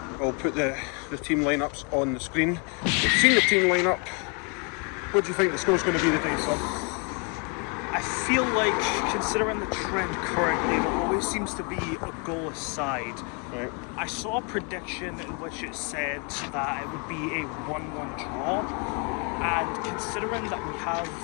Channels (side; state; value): right; quieter; 35.4 dB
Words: We'll put the team lineups on the screen. We've seen the team lineup. What do you think the score's going to be today, son? I feel like, considering the trend currently, there always seems to be a goal aside. Right. I saw a prediction in which it said that it would be a 1-1 draw, and considering that we